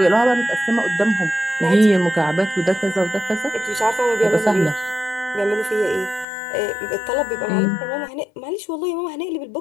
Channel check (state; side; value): drops out; right; at 6.2 s